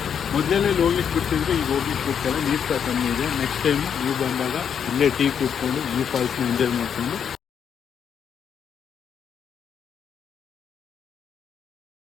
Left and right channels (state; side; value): quieter; right; 7.8 dB